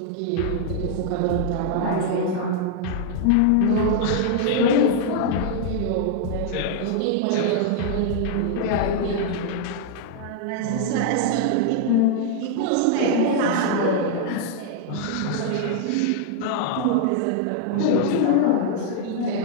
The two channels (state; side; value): different; both; correlation 0.00